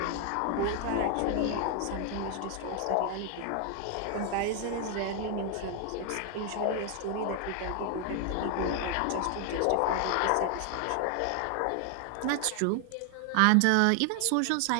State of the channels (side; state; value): both; different; correlation 0.00